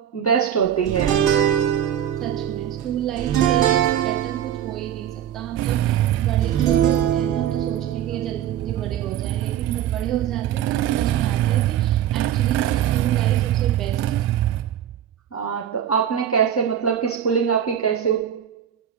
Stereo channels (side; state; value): left; quieter; 10.2 dB